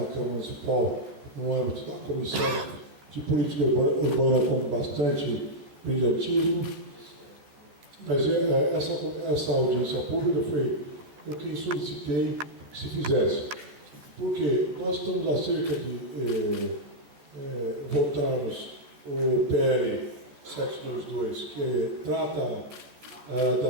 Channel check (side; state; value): left; late; 14 ms